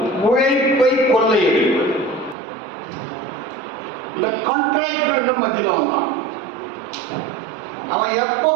உழைப்பை கொள்ளையடிப்பது. இந்த கான்ட்ராக்டர் மத்தியில் வந்தான். அவன் எப்போ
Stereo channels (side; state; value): left; drops out; at 2.4 s